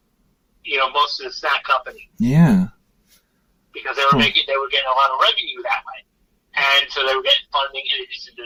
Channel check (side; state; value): both; identical; correlation 1.00